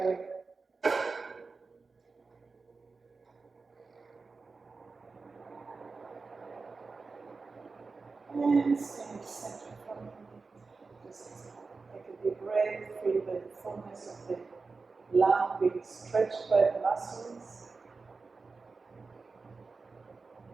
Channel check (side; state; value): left; quieter; 4.2 dB